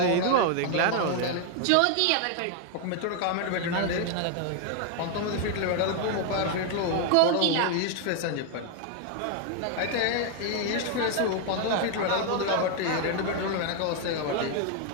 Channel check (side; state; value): both; different; correlation 0.00